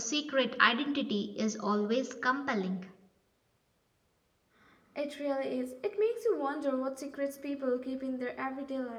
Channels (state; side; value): identical; both; correlation 1.00